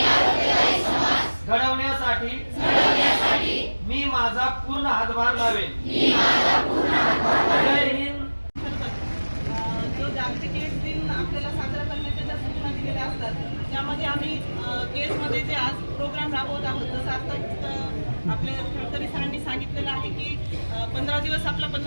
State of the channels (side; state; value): both; inverted; correlation -1.00